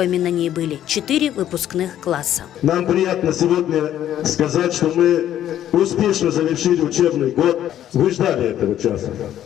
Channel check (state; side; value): quieter; right; 11.4 dB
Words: на ней были 4 выпускных класса. Нам приятно сегодня сказать, что мы успешно завершили учебный год. Вы ждали этого часа.